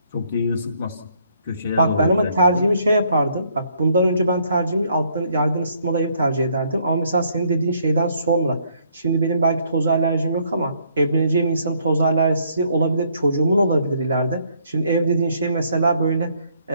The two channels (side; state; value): both; inverted; correlation -0.68